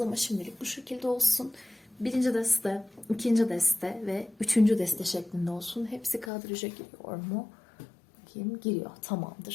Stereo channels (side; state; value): right; drops out; at 6.3 s